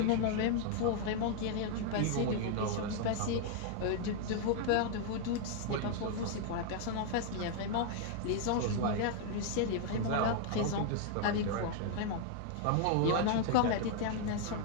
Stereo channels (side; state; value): both; different; correlation 0.00